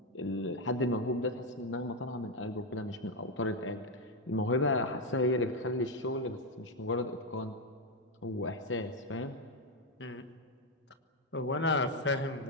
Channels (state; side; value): normal; both; correlation 0.05